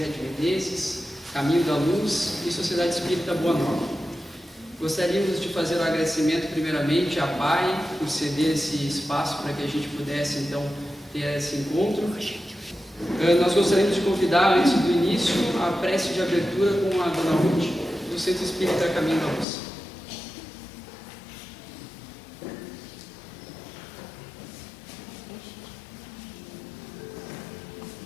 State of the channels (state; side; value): drops out; right; at 19.5 s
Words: de Menezes, Caminho da Luz e Sociedade Espírita Boa Nova. Gostaríamos de fazer um agradecimento primeiramente à PAI por ceder esse espaço para que a gente pudesse então ter esse encontro. Nós gostaríamos de convidar, antes do início, a prece de abertura com a Dona Ruth, do Centro Espírita Caminho da Luz.